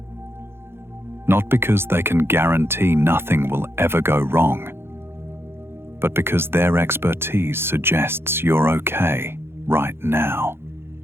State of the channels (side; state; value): left; late; 0.11 ms